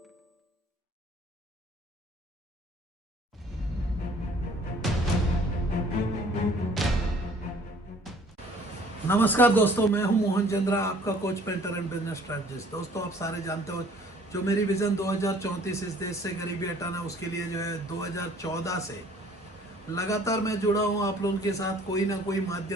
दोस्तों, मैं हूं मोहन चंद्रा, आपका coach, painter and business strategist. दोस्तों, आप सारे जानते हो जो मेरी विजन 2034 इस देश से गरीबी हटाना, उसके लिए जो है 2014 से लगातार मैं जुड़ा हूं आप लोगों के साथ कोई ना कोई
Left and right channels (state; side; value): normal; both; correlation 0.55